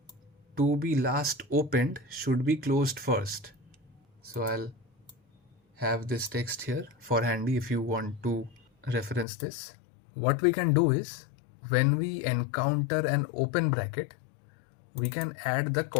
to be last opened should be closed first. So I'll have this text here for handy if you want to reference this. What we can do is when we encounter an open bracket, we can add the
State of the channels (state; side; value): drops out; right; at 9.2 s